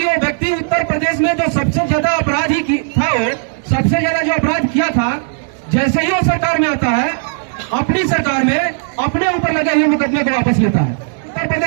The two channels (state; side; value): silent; left; digital silence